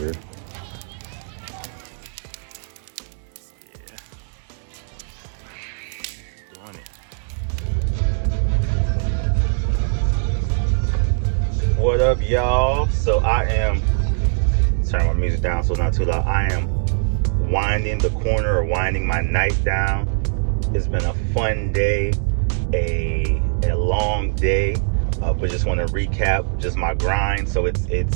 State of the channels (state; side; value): silent; left; digital silence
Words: What up, y'all? So I am turn my music down so it's not too loud. I am winding the corner or winding my night down. It's been a fun day, a long day, but just want to recap just my grind. So